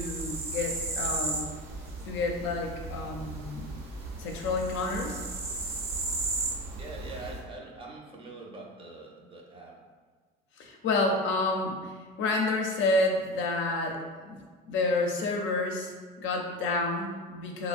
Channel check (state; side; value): normal; both; correlation 0.25